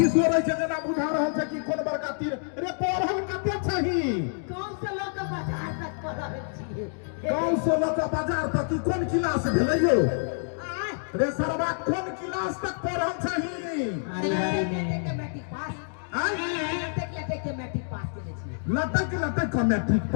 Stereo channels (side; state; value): right; silent; digital silence